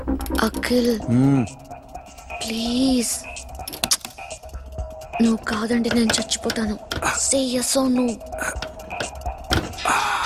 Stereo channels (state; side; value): identical; both; correlation 1.00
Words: అఖిల్ ప్లీజ్, నువ్వు కాదంటే నేను చచ్చిపోతాను. సే yes or no.